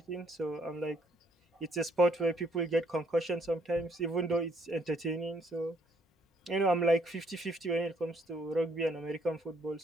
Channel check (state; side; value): normal; both; correlation 0.68